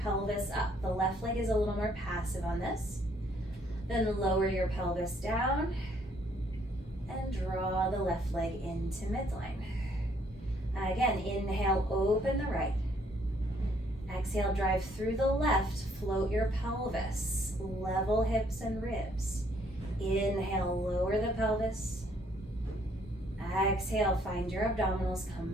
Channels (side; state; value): both; normal; correlation 0.66